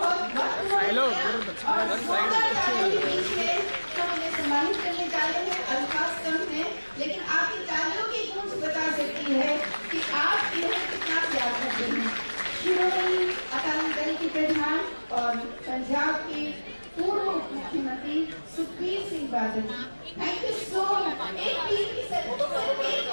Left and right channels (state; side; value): inverted; both; correlation -1.00